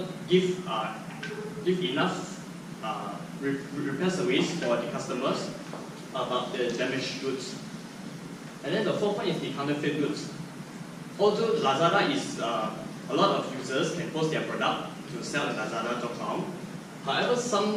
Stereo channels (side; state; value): both; identical; correlation 1.00